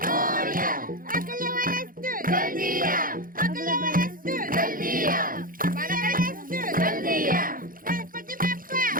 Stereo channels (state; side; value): late; left; 0.41 ms